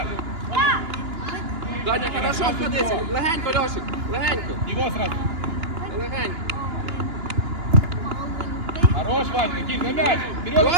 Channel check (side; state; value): left; late; 2.9 ms